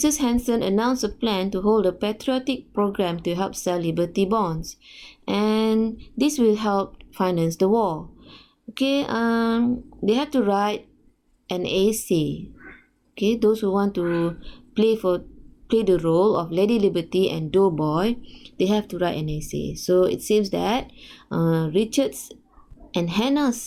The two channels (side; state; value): both; identical; correlation 1.00